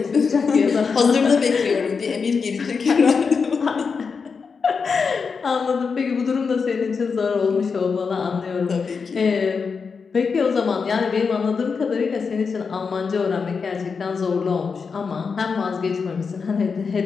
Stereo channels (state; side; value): quieter; right; 5.4 dB